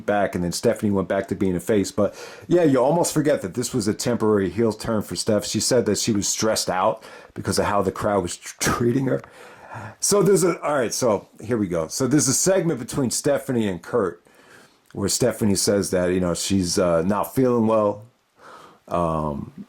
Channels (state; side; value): identical; both; correlation 1.00